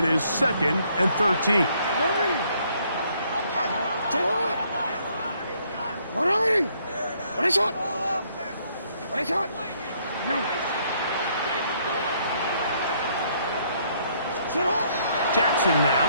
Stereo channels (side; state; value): both; inverted; correlation -0.68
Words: is 2nd and 13. 180! What is shot? What is shot? You. Jackson now.